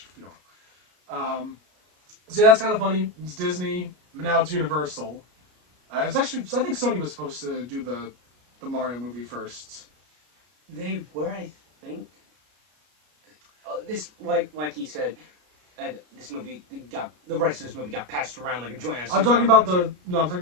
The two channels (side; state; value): left; late; 33 ms